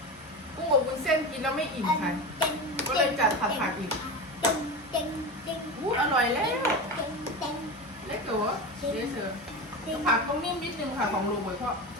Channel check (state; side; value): normal; both; correlation 0.23